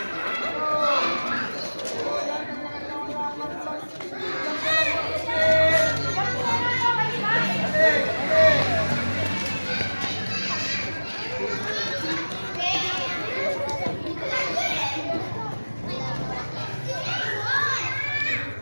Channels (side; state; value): both; inverted; correlation -1.00